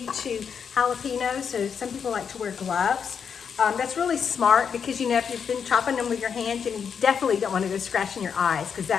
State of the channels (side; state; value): right; quieter; 6.9 dB